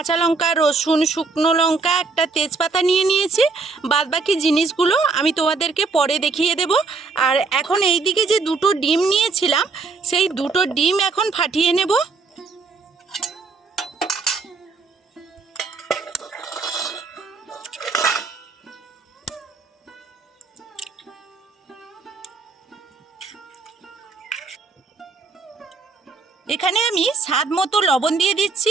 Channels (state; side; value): quieter; left; 4.3 dB